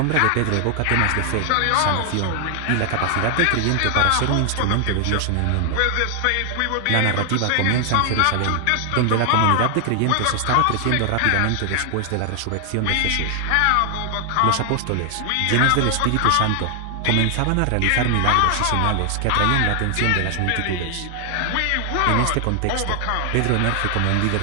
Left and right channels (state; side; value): different; both; correlation 0.00